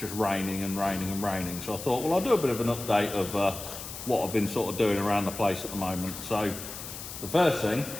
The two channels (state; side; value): noise; left; hiss, 10 dB below the sound